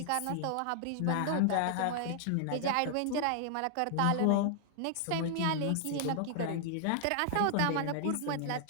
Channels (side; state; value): both; different; correlation -0.01